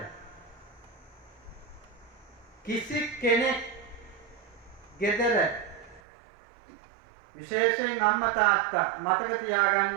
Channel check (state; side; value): drops out; left; at 6.0 s